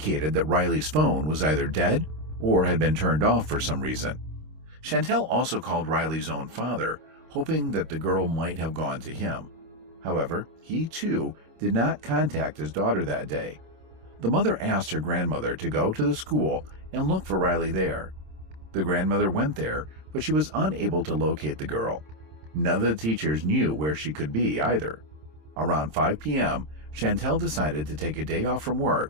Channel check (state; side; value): late; left; 26 ms